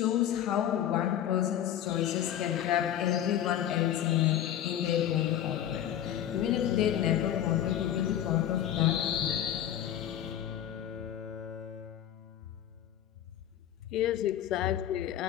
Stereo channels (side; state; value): right; quieter; 11.0 dB